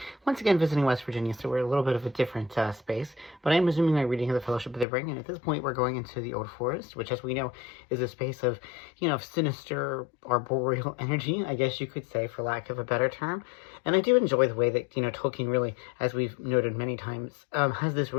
once again visiting West Virginia, so we're a little bit of a different space, but I'm resuming my reading of the Fellowship of the Ring, and at this point we're going into the Old Forest, which as we know is a space of, sinister arboreal energy, I guess you could say, for lack of a better term. And I do enjoy the way that, Tolkien really, as we've noted many times, has this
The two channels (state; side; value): drops out; right; at 4.9 s